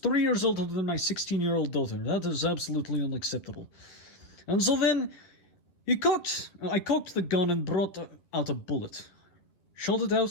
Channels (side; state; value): right; late; 11 ms